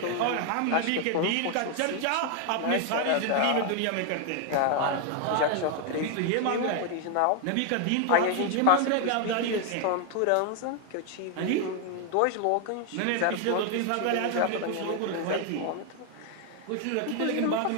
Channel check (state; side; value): different; both; correlation 0.00